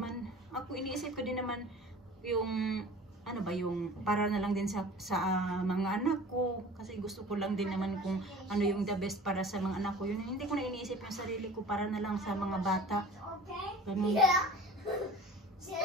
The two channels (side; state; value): both; normal; correlation 0.42